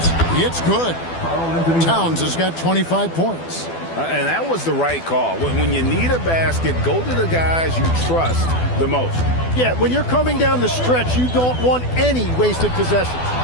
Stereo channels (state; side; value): late; right; 12 ms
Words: It's good. Towns has got 25 points. And that was the right call. When you need a basket, go to the guys you trust the most. Yeah, when you're coming down the stretch, you don't want any wasted possessions.